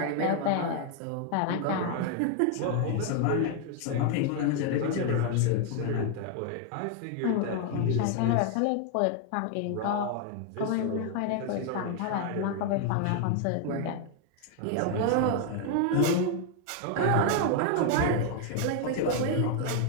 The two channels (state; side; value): different; both; correlation 0.00